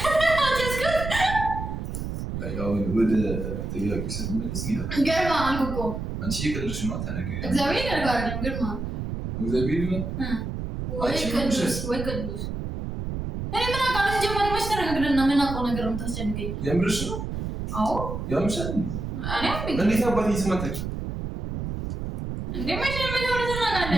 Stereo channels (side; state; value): right; noise; rumble, 5 dB below the sound